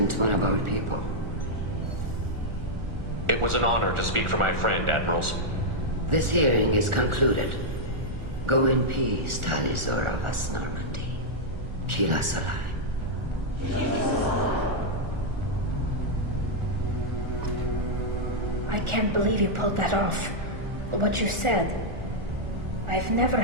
one of our people. It was an honor to speak for my friend, Admirals. This hearing is concluded. Go in peace, Tali Zora Vas Normandy. Kila Solai. I can't believe you pulled that off. What you said. I've never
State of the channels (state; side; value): late; left; 1.4 ms